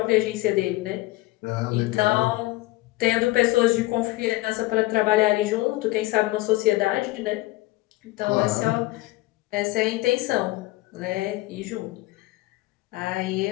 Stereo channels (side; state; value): right; quieter; 19.5 dB